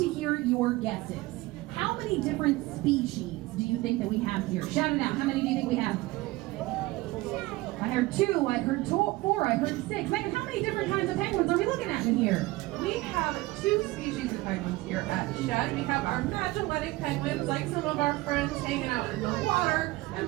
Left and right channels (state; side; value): quieter; left; 19.8 dB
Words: hear your guesses. How many different species do you think that we have here? Shout it out. How many do you think we have? I heard 2, I heard 4, I heard 6. Megan, how many different kinds of penguins are we looking at in here? We have 2 species of penguins here at Shed. We have our Magellanic penguins, like some of our friends hanging out in the water, and